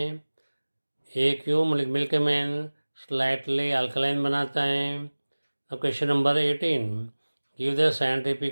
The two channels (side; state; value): both; inverted; correlation -1.00